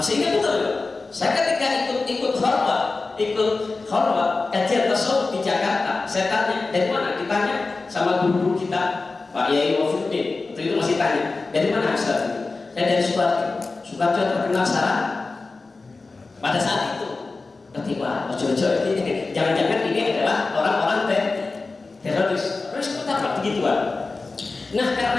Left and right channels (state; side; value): quieter; right; 3.8 dB